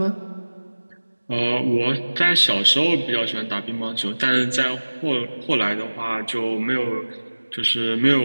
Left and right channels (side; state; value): both; inverted; correlation -1.00